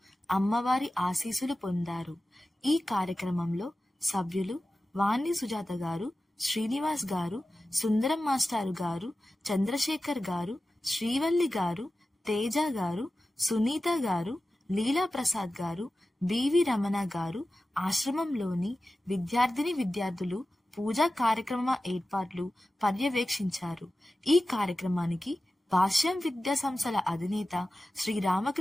అమ్మవారి ఆశీస్సులు పొందారు. ఈ కార్యక్రమంలో సభ్యులు వాణి సుజాత గారు, శ్రీనివాస్ గారు, సుందరం మాస్టారు గారు, చంద్రశేఖర్ గారు, శ్రీవల్లి గారు, తేజ గారు, సునీత గారు, లీలా ప్రసాద్ గారు, బివి రమణ గారు, ఆశ్రమంలోని విద్యార్థులు పూజా కార్యక్రమ ఏర్పాట్లు పర్యవేక్షించారు. ఈ కార్యక్రమానికి భాష్యం విద్యా సంస్థల అధినేత శ్రీ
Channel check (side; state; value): both; normal; correlation 0.94